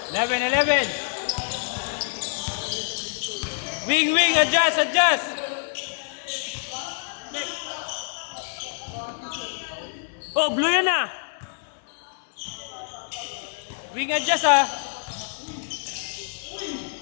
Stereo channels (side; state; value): right; silent; 61 dB below the other